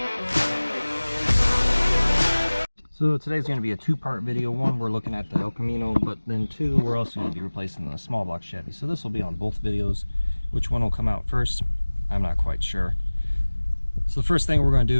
So today's going to be a two-part video. One, we're looking at the El Camino, but then two, we're also going to be replacing the small block Chevy. So this will be on both videos. Which one will come out first? I'm not quite sure. So the first thing we're going to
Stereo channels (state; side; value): inverted; both; correlation -1.00